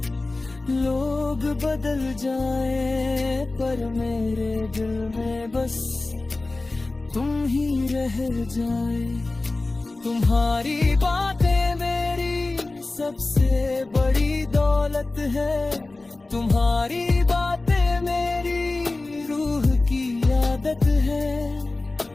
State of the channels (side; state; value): right; quieter; 3.1 dB